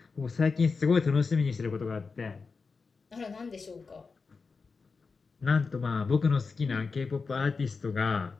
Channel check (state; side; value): quieter; right; 4.7 dB